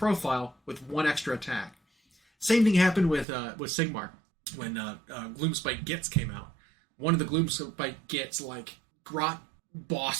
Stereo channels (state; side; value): drops out; left; at 3.2 s